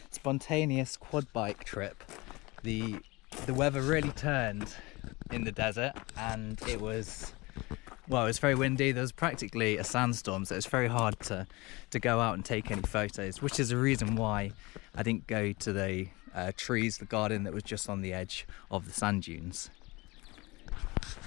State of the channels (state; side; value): quieter; right; 23.5 dB